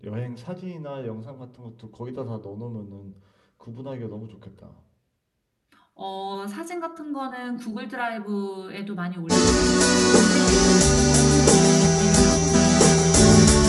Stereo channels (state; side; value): identical; both; correlation 1.00